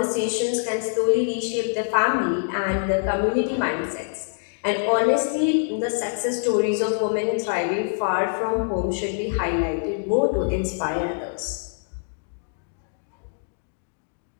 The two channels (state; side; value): silent; right; digital silence